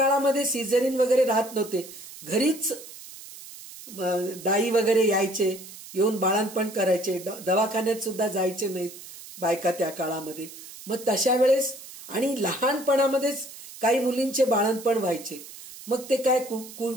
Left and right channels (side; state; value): right; noise; hiss, 16 dB below the sound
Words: सिझेरिन वगैरे राहत नव्हते, घरीच दाई वगैरे यायचे, येऊन बाळंतपण करायचे, दवाखान्यात सुद्धा जायचे नाहीत बायका त्या काळामध्ये. मग तशा वेळेस आणि लहानपणामध्येच काही मुलींचे बाळंतपण व्हायचे. मग ते काय